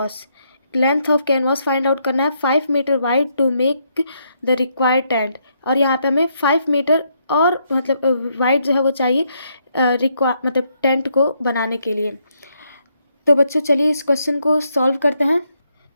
Length of canvas find out करना है 5 metre wide to make the required tent. और यहाँ पे हमें 5 मीटर और मतलब वाइड जो है वो चाहिए मतलब टेंट को बनाने के लिए। तो बच्चों चलिए इस क्वेश्चन को सॉल्व करते हैं।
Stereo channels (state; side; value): inverted; both; correlation -0.75